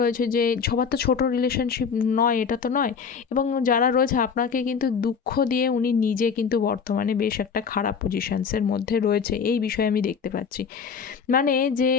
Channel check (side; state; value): right; quieter; 6.2 dB